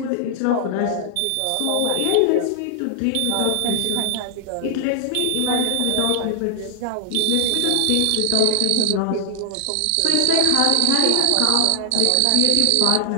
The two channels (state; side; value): different; both; correlation 0.00